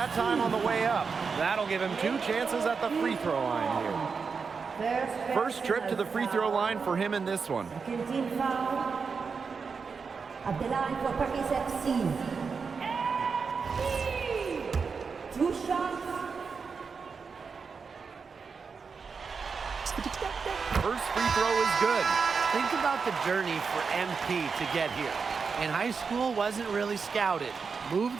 time on the way up. That'll give him 2 chances at the free throw line here. First trip to the free throw line for him in this one. Team foul at the line for Paris FC. 2 shots. First free throw is good. Think about the journey for MP to get here. In high school, wasn't really scouted.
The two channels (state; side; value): quieter; left; 5.3 dB